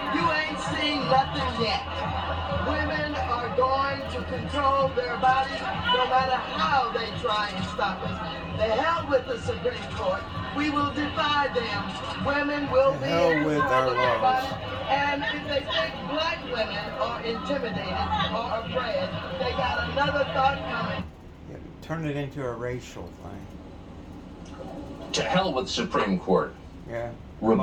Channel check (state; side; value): identical; both; correlation 1.00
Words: You ain't seen nothing yet. Women are going to control their bodies no matter how they try and stop us. The hell with the Supreme Court. We will defy them. Women will be in control of their bodies. And if they think black women are intimidated or afraid, they got another thought coming. Yeah, turn it into a racial thing. To hell with Supreme Court. Yeah.